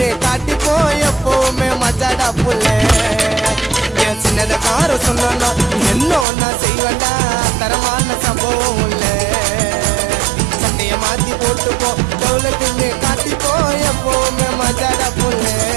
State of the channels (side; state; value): left; drops out; at 6.2 s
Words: காட்டிப்போ எப்பவுமே மஜாடா புள்ள. என் சின்னத கார சொன்னா என்ன நான் செய்வேண்டா தரமான சம்பவம் இல்ல. சட்டைய மாத்தி போட்டுப்போ டவுலுக்குன்னு காட்டிப்போ எப்பவுமே மஜாடா புள்ள.